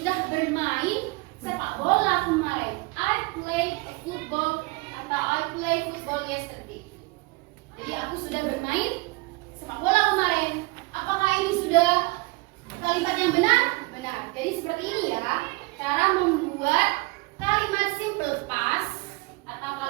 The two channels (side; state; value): left; quieter; 26.3 dB